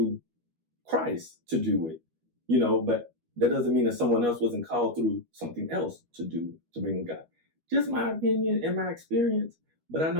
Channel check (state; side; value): late; left; 12 ms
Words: Christ to do it, but that doesn't mean that someone else wasn't called through something else to bring God. Just my opinion and my experience, but I